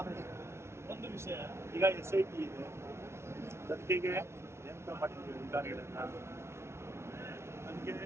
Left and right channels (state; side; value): late; left; 0.13 ms